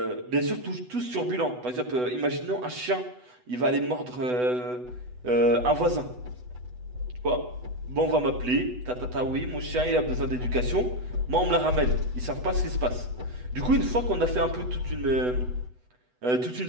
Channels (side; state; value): left; late; 8.1 ms